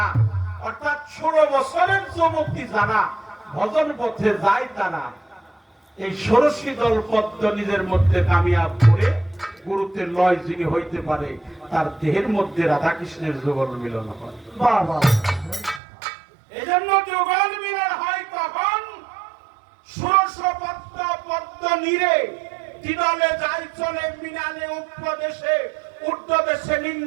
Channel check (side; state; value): left; drops out; at 15.8 s